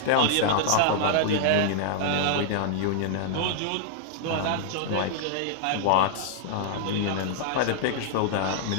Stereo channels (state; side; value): different; both; correlation -0.01